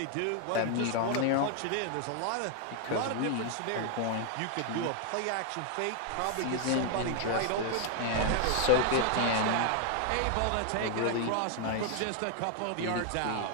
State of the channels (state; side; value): different; both; correlation 0.00